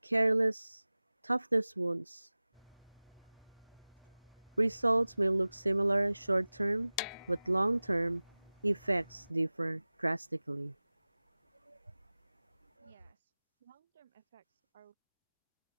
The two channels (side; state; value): both; inverted; correlation -0.99